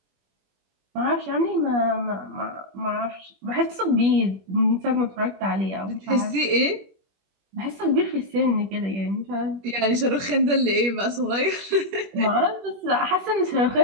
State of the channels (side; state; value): left; late; 21 ms